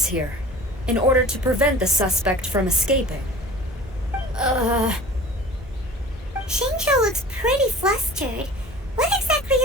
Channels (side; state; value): both; normal; correlation 0.41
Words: here, in order to prevent the suspect from escaping. Shincho looks pretty flustered. What exactly